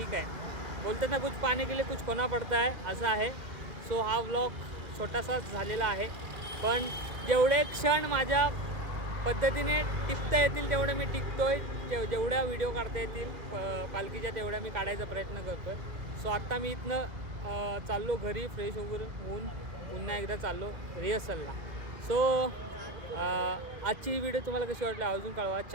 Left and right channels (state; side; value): late; left; 1.8 ms